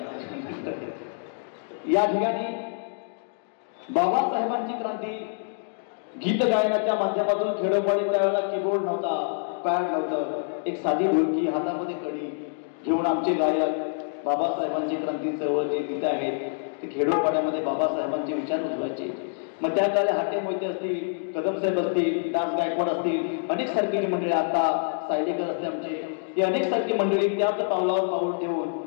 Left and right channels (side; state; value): right; silent; digital silence